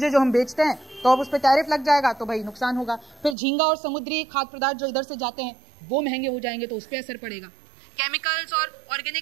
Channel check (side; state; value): left; drops out; at 3.4 s